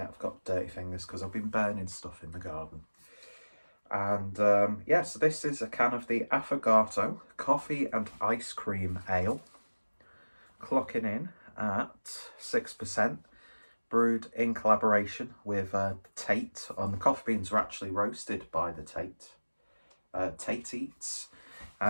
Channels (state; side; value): inverted; both; correlation -1.00